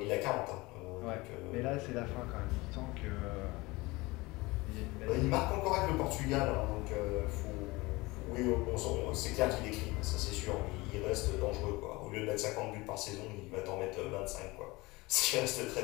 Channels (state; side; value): quieter; right; 22.4 dB